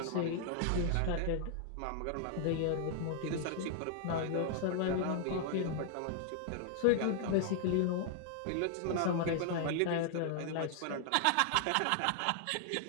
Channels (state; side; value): different; both; correlation 0.00